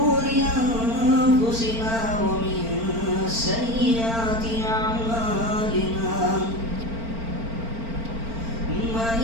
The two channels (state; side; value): late; left; 4.4 ms